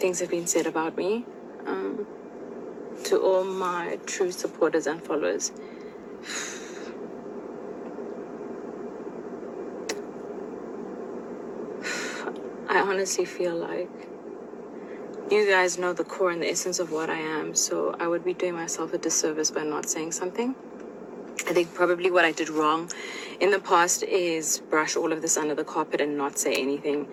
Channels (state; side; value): identical; both; correlation 1.00